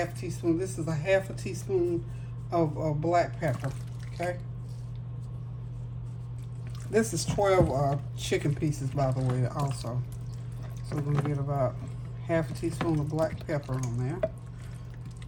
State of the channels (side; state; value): both; identical; correlation 1.00